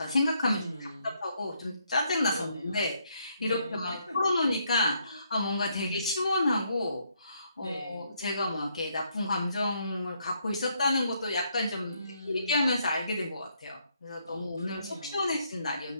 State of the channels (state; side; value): inverted; both; correlation -0.73